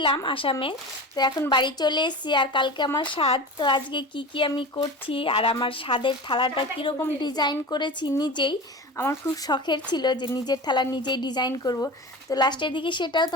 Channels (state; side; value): normal; both; correlation 0.31